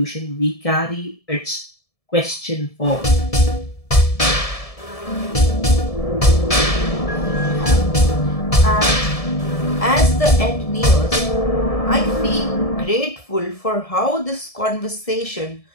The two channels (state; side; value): late; right; 1.7 ms